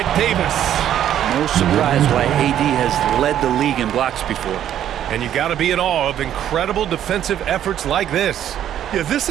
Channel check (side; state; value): left; quieter; 10.8 dB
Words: Davis. No surprise why AD has led the league in blocks before. And you got to be in awe of incredible defensive efforts like this. Yeah, this